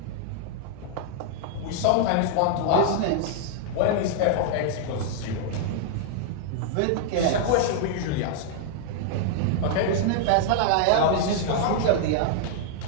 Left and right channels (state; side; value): different; both; correlation -0.01